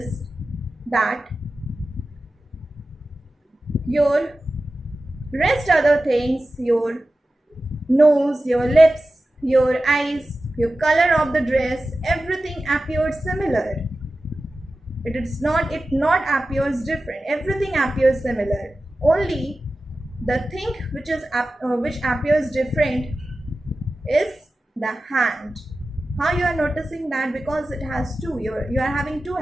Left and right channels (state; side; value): normal; both; correlation 0.94